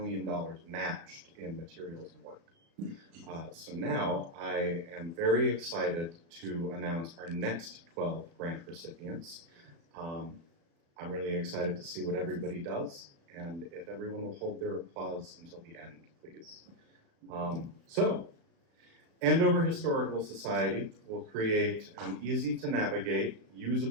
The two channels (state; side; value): late; left; 36 ms